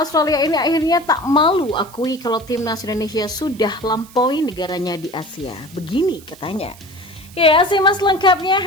ini akhirnya tak malu akui kalau Timnas Indonesia sudah lampaui negaranya di Asia. Begini katanya. Ya, simak lengkapnya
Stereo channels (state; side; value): noise; right; hiss, 22 dB below the sound